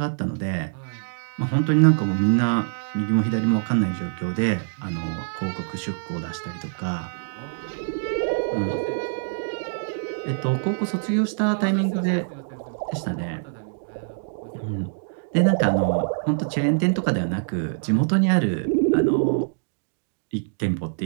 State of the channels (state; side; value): silent; left; digital silence